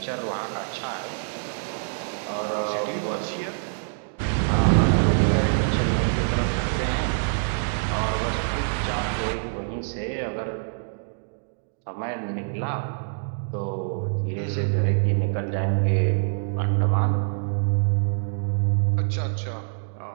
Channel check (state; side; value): silent; left; digital silence